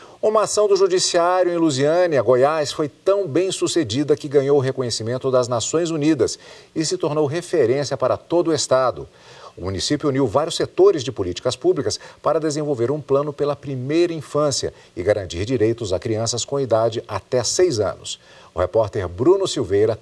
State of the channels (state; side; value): identical; both; correlation 1.00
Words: Uma ação do Judiciário em Lusiânia, Goiás, foi tão bem sucedida que ganhou o reconhecimento das Nações Unidas e se tornou referência para todo o estado. O município uniu vários setores de políticas públicas para desenvolver um plano pela primeira infância e garantir direitos a crianças com idade até 6 anos. O repórter Bruno Silveira